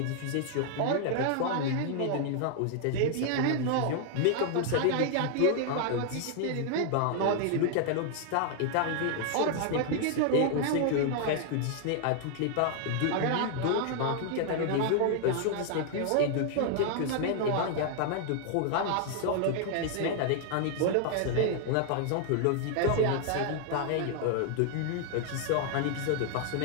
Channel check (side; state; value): both; different; correlation 0.00